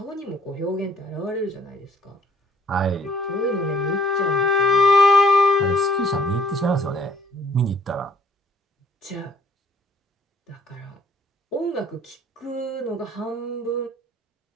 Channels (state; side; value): normal; both; correlation 0.60